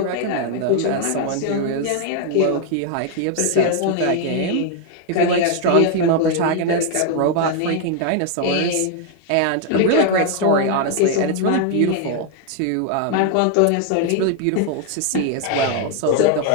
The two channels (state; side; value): different; both; correlation 0.00